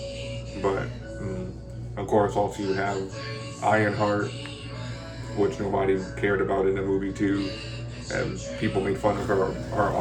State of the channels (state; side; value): identical; both; correlation 1.00